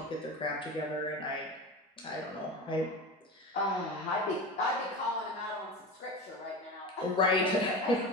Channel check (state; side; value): normal; both; correlation 0.27